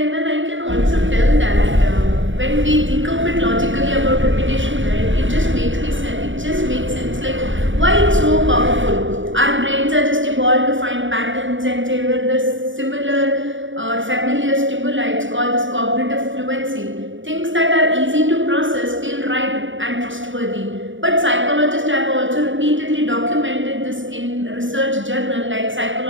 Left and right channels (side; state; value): left; late; 0.56 ms